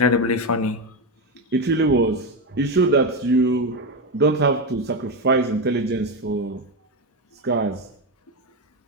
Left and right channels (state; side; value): normal; both; correlation 0.11